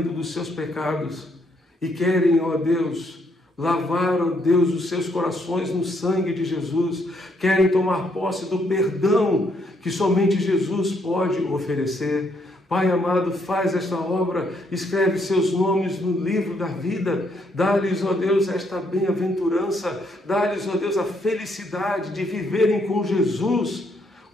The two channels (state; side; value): normal; both; correlation 0.73